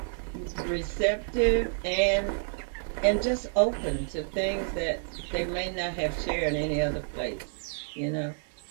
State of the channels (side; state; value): left; silent; digital silence